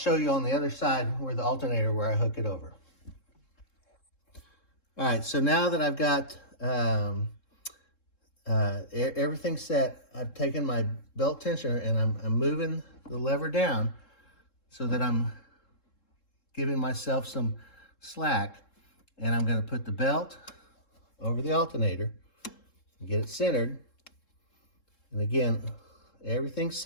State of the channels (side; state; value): right; late; 3.7 ms